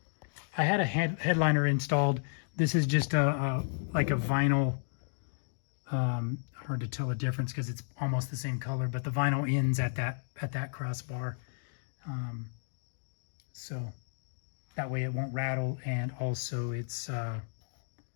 had a headliner installed. This is just like a vinyl. Hard to tell the difference because it's almost the same color, but the vinyl ends at that crossbar, so that way it won't rattle, and also it's a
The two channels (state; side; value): silent; right; digital silence